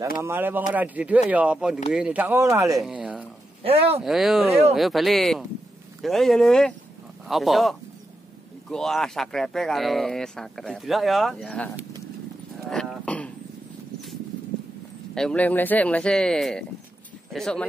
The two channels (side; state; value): both; normal; correlation 0.87